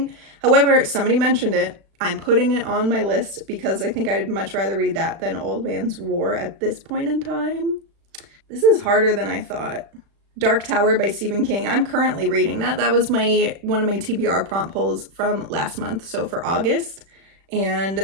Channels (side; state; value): left; late; 36 ms